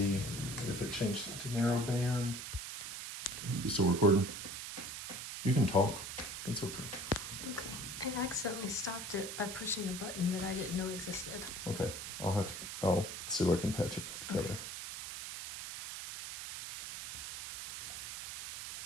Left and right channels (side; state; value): right; noise; hiss, 7 dB below the sound